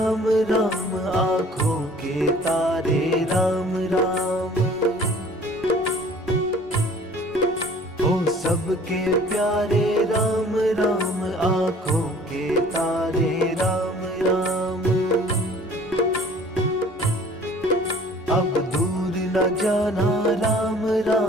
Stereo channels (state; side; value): normal; both; correlation 0.51